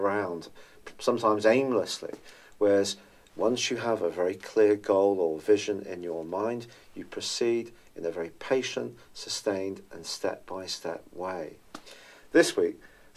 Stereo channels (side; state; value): both; identical; correlation 1.00